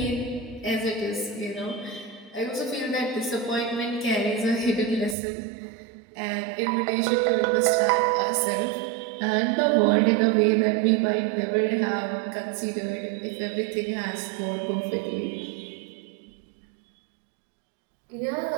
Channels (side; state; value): left; drops out; at 5.2 s